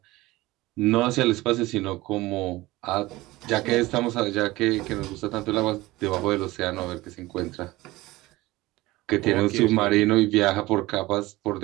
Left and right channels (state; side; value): quieter; left; 19.2 dB